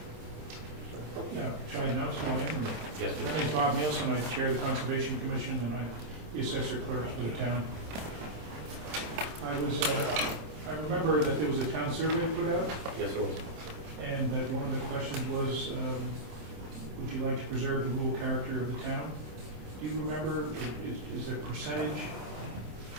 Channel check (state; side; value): late; left; 27 ms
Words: Yeah, Charlie Nelson, I am. Yes, My please. name is Bob Nielsen, I chair the Conservation Commission, and I'm the assessor clerk for the town. I remember that there was a town survey put out, Yes, it was. and that one of the questions was, would you like to preserve the rural character of the town? Do you remember, is a percentage